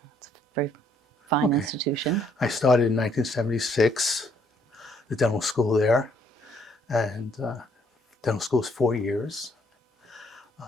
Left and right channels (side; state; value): both; normal; correlation 0.67